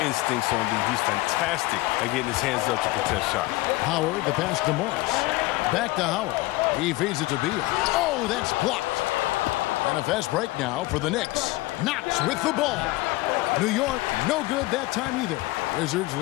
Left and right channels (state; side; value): quieter; right; 20.0 dB